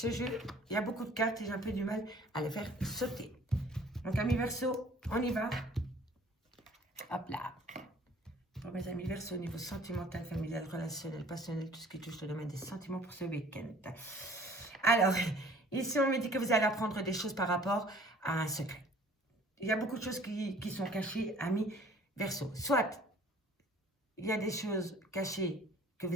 jeu, il y a beaucoup de cartes et j'ai un peu du mal à les faire sauter. Donc, amis Verseau, on y va. Hop là. Pour mes amis Verseau, au niveau sentimental, familial, relationnel, passionnel, tout ce qui touche le domaine des sentiments pour ce week-end. Alors, ici, on me dit que vous allez apprendre des choses par rapport à un secret. Il y a beaucoup de choses qui sont cachées, amis Verseau. Soit, il y a des choses cachées que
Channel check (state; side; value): normal; both; correlation 0.53